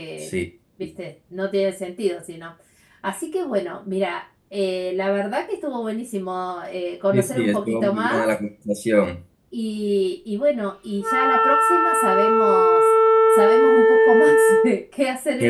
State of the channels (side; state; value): both; identical; correlation 1.00